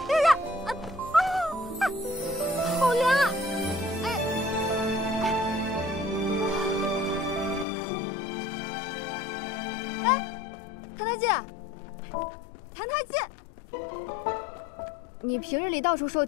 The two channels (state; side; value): drops out; right; at 7.7 s